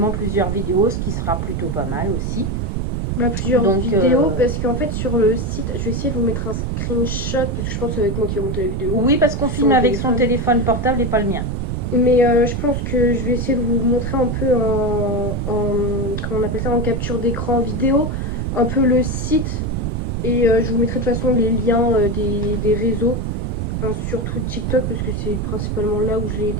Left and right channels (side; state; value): right; noise; rumble, 1 dB below the sound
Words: plusieurs vidéos, ce qui sera plutôt pas mal aussi. Plusieurs vidéos, parce qu'en fait sur le site, je vais essayer de vous mettre un screenshot, parce que je pense que c'est avec moi qui vais monter la vidéo. Oui, parce qu'on filme avec son téléphone portable et pas le mien. Mais je pense que je vais essayer de vous montrer un peu comment on appelle ça, en capture d'écran vidéo, un peu le site. Et je vous mettrai de toute façon les liens des réseaux, enfin, surtout TikTok, parce que c'est principalement là où je l'ai